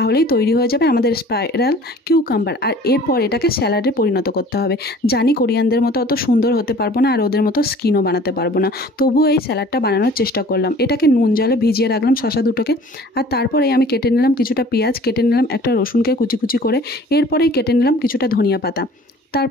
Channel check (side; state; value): both; normal; correlation 0.48